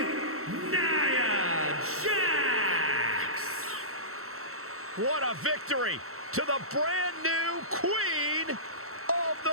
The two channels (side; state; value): left; late; 0.63 ms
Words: Nia Jax. What a victory to the brand new Queen of